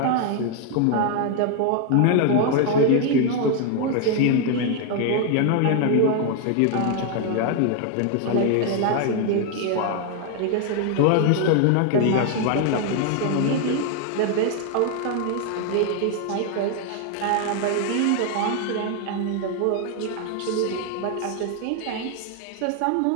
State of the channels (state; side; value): different; both; correlation 0.00